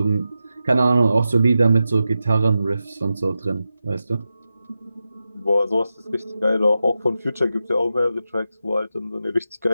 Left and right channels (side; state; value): both; inverted; correlation -0.91